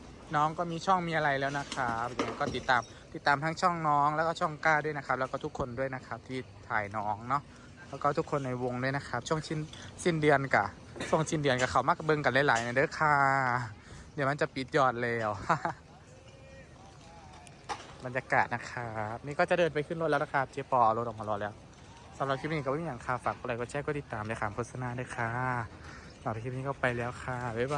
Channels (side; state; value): both; identical; correlation 1.00